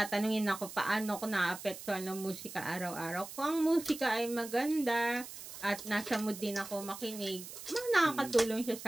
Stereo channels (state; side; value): noise; right; hiss, 12 dB below the sound